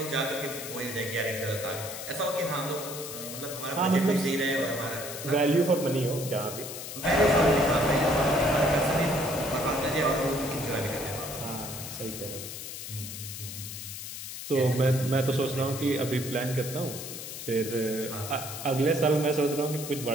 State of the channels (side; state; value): left; noise; hiss, 9 dB below the sound